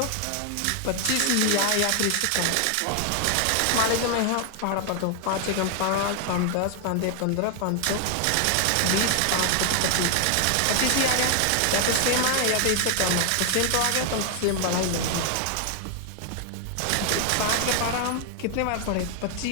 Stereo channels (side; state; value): both; different; correlation 0.00